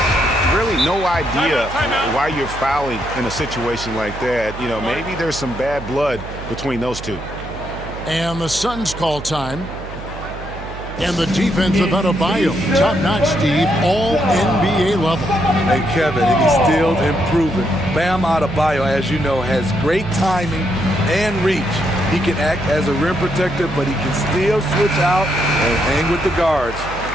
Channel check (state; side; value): noise; right; hum, 12 dB below the sound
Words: Really no idea why you're fouling in a situation like that. You know, maybe there's some bad blood between those two. And the Suns call time. And the defense of Adebayo, top-notch, Steve, all NBA level. Hey, Kevin, and he's still improving. Bam Adebayo, as you know, has great timing and reach. He can act as a rim protector, but he can still switch out and hang with the guards.